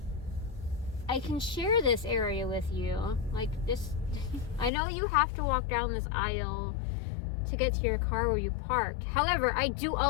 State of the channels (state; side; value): drops out; right; at 4.7 s